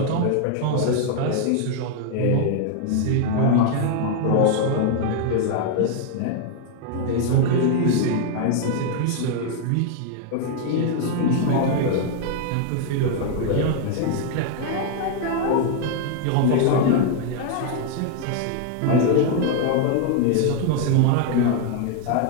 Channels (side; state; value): both; different; correlation 0.00